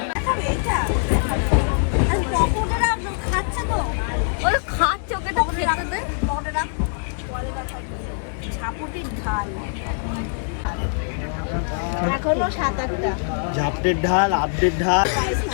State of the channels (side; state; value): right; silent; 64 dB below the other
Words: খাচ্ছে তো বলে খাচ্ছে, ওকে তো খেতে দে। ঝাপুটির ঢাল ঝাপটের ঢাল, আপডেট ঢাল।